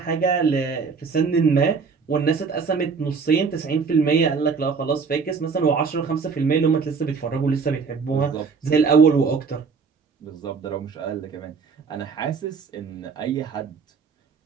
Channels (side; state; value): left; quieter; 5.3 dB